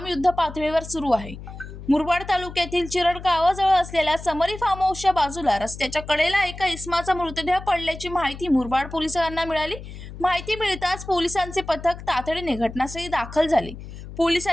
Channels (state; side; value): noise; left; hum, 13 dB below the sound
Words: युद्ध पातळीवर सुरू आहे। मुरबाड तालुक्यातील चिरड गावाजवळ असलेल्या समरी फार्म हाऊसच्या बाजूला रस्त्याच्या कडेला एका इसमाचा मृतदेह पडल्याची माहिती मुरबाड पोलिसांना मिळाली। माहिती मिळताच पोलिसांचे पथक तातडीने घटनास्थळी दाखल झाले।